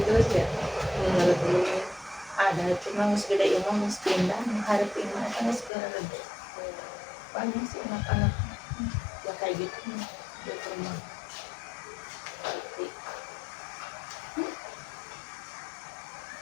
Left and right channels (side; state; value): right; drops out; at 5.7 s